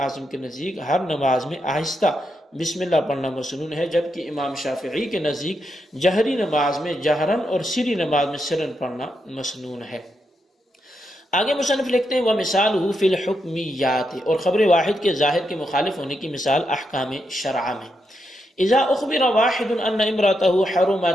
کے نزدیک ہر نماز میں آہستہ بسم اللہ پڑھنا مسنون ہے، جبکہ امام شافعی کے نزدیک جہری نماز میں جہرن اور سری نماز میں سرن پڑھنا مسنون ہے۔ آگے مصنف لکھتے ہیں وَمِثَالُهُ فِي الْحُكْمِيَّاتِ، اور خبر واحد کے ظاہر کے مخالف ہونے کی مثال احکام شرع میں۔ اذا اخبر واحد ان امرأته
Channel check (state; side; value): normal; both; correlation 0.83